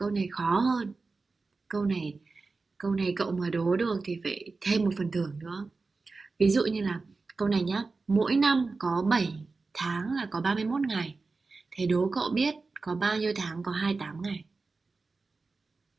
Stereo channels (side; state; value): left; quieter; 4.0 dB